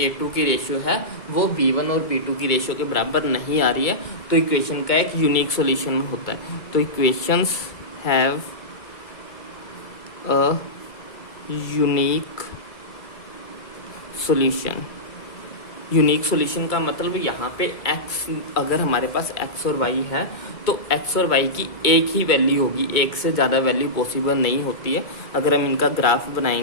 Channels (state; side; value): late; right; 2.3 ms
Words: की रेशियो है वो b1 और b2 की रेशियो के बराबर नहीं आ रही है, तो इक्वेशन का एक यूनिक सॉल्यूशन होता है। तो equations have a unique solution. Unique solution का मतलब यहाँ पे x, अगर हमारे पास x और y है तो x और y की एक ही वैल्यू होगी, एक से ज़्यादा वैल्यू पॉसिबल नहीं होती है। अगर हम इनका ग्राफ